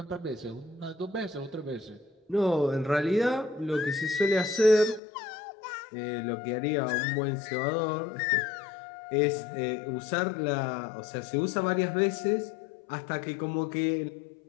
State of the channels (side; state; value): right; drops out; at 5.0 s